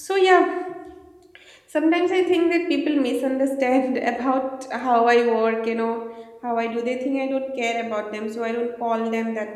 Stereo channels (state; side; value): identical; both; correlation 1.00